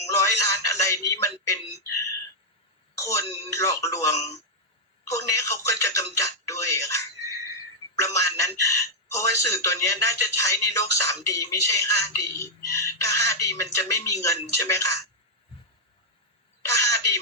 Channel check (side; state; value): both; normal; correlation -0.04